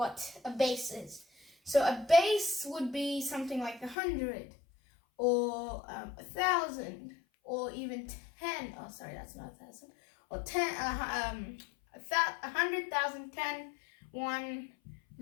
a base is. So a base would be something like 100, or 1,000, or even 10. Oh, sorry, that's not 1,000. Or 10, 100,000, 10, 1,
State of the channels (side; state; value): right; drops out; at 4.0 s